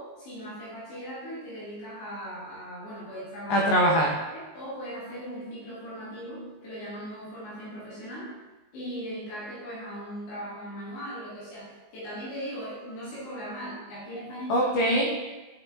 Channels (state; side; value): late; right; 19 ms